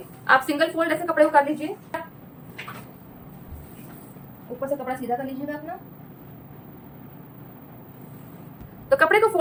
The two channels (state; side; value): identical; both; correlation 1.00